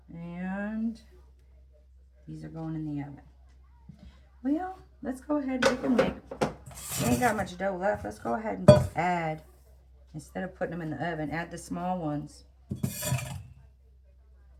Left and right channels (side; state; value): both; identical; correlation 1.00